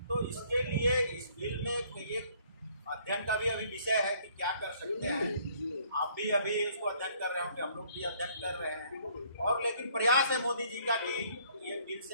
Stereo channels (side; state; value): both; inverted; correlation -0.62